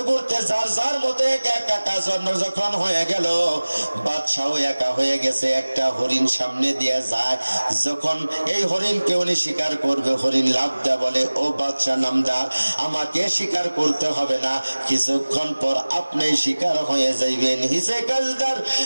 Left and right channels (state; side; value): inverted; both; correlation -1.00